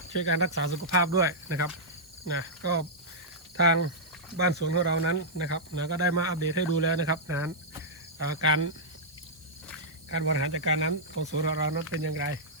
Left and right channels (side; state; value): right; noise; hiss, 26 dB below the sound